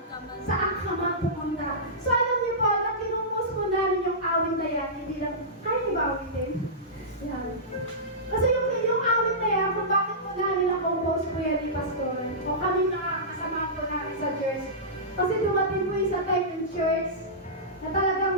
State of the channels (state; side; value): normal; both; correlation -0.17